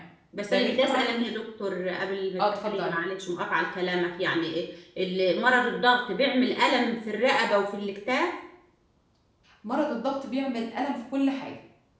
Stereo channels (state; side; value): identical; both; correlation 1.00